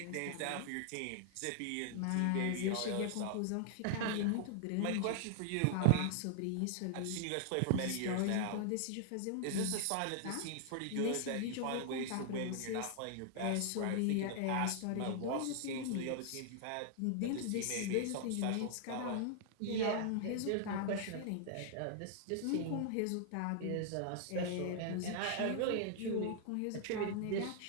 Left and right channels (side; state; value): both; different; correlation 0.00